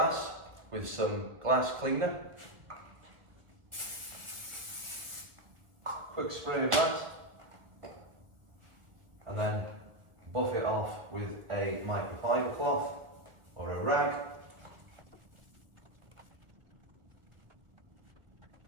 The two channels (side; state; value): left; late; 1.7 ms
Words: with some glass cleaner. Quick spray of that, and then buff it off with a microfiber cloth or a rag.